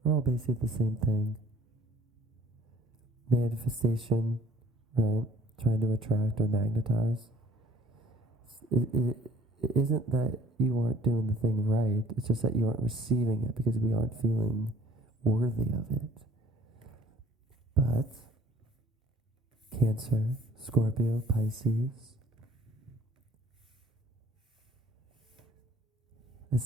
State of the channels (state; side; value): normal; both; correlation 0.57